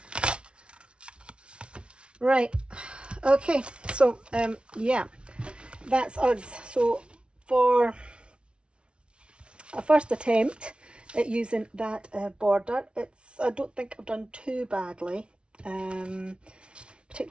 Right, okay, so yeah, that's us. So for a first attempt at using that border, I don't think I've done too badly,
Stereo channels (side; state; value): left; late; 0.058 ms